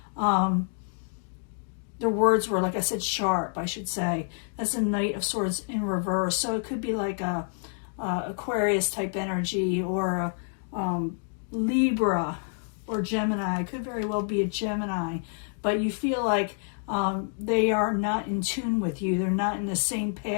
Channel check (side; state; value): right; silent; 59 dB below the other